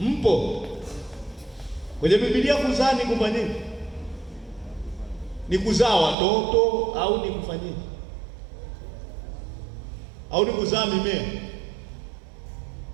Kwenye Biblia kuzaa ni kufanyaje? Ni kuzaa watoto au ni kufanyaje? Au ni kuzaa mimea?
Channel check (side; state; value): left; drops out; at 6.2 s